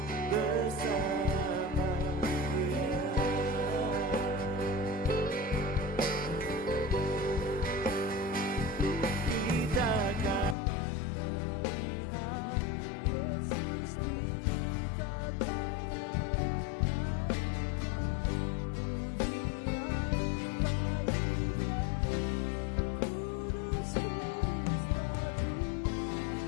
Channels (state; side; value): drops out; right; at 10.6 s